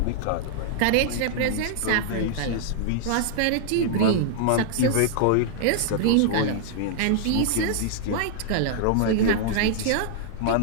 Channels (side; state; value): both; different; correlation -0.01